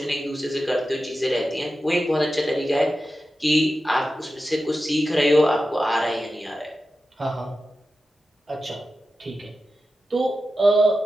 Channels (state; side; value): normal; both; correlation 0.92